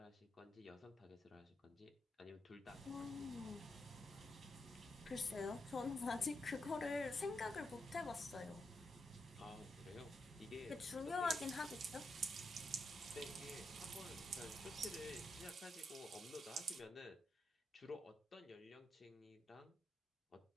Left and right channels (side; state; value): both; normal; correlation 0.83